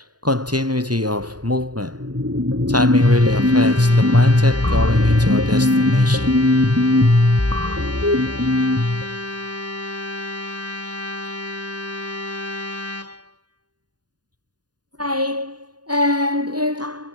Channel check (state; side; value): late; left; 0.69 ms